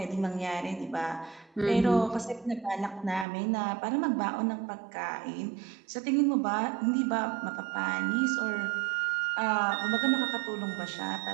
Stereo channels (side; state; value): left; drops out; at 3.2 s